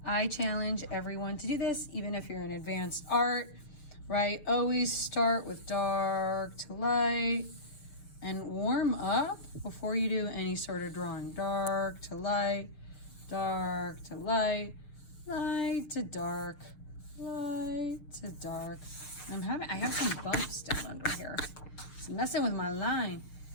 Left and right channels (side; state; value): right; late; 6.7 ms